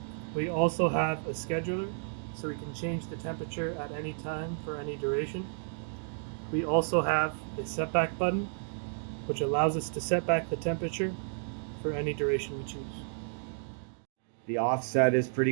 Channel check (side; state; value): left; silent; digital silence